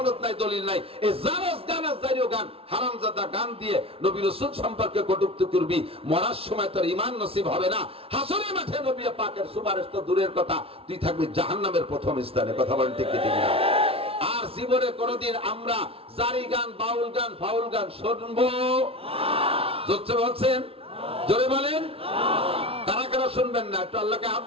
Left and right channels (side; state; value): left; late; 0.27 ms